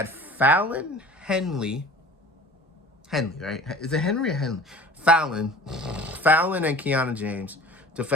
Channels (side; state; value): both; normal; correlation 0.44